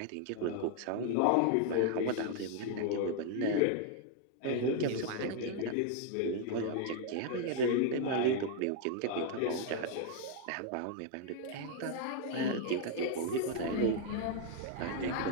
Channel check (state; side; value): different; both; correlation 0.00